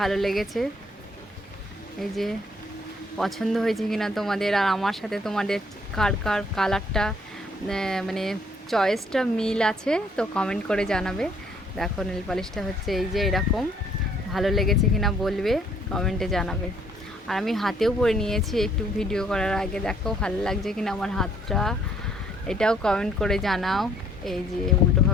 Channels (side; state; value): both; normal; correlation 0.64